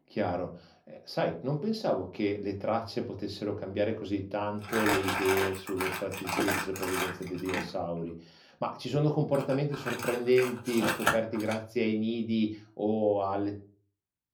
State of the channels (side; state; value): both; identical; correlation 1.00